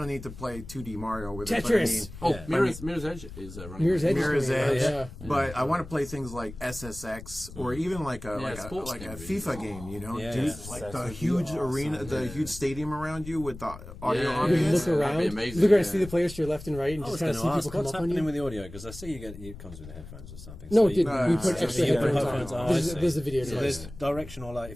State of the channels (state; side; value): noise; left; rumble, 14 dB below the sound